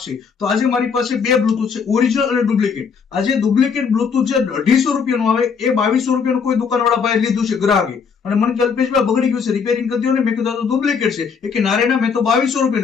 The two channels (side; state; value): right; quieter; 6.0 dB